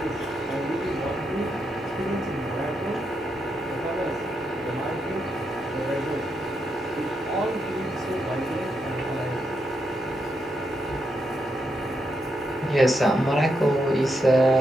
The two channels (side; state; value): both; normal; correlation 0.82